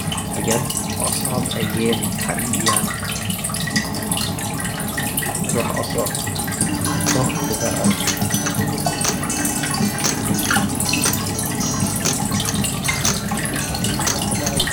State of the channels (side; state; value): both; identical; correlation 1.00